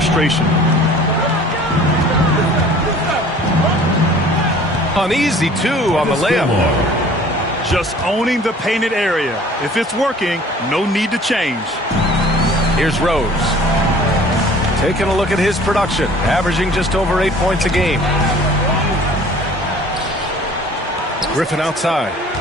Uneasy, too, on the layup. Just owning the painted area. If it's working, no need to change. Here's Rose. Taking a look at his production, averaging just over 8 points a game. Griffin outside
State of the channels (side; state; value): both; normal; correlation 0.49